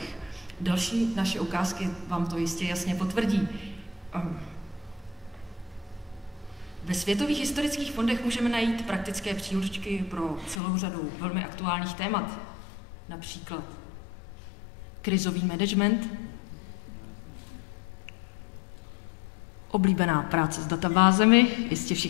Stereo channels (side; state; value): right; drops out; at 10.6 s